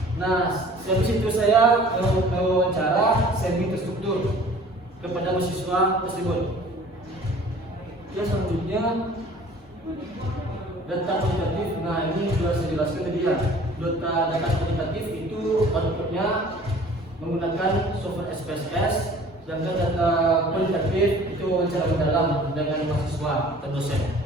Nah, habis itu saya mewawancara semi terstruktur kepada mahasiswa tersebut. Ya, selanjutnya data kuantitatif. Nah, ini sudah saya jelaskan tadi ya. Data kuantitatif itu outputnya menggunakan software SPSS. Sedangkan data kualitatif itu wawancara mendalam dengan mahasiswa atau dosen.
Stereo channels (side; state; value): both; normal; correlation 0.49